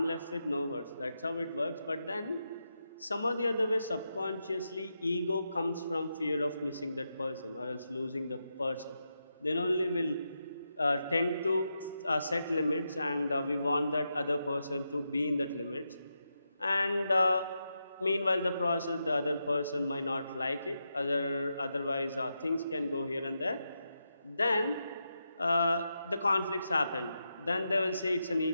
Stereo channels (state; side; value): inverted; both; correlation -0.86